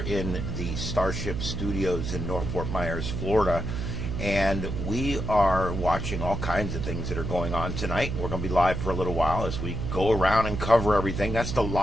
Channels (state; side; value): noise; right; hum, 4 dB below the sound